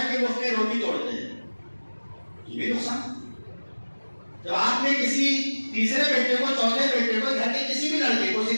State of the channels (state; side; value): inverted; both; correlation -1.00